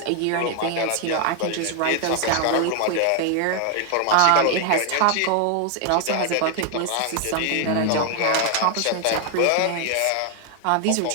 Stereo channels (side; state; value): both; different; correlation 0.00